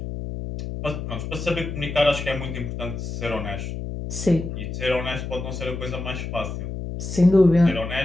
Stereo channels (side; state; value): left; noise; hum, 6 dB below the sound